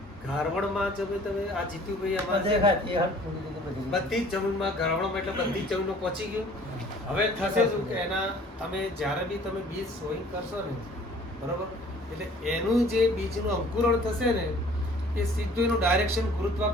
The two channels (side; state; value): both; normal; correlation 0.52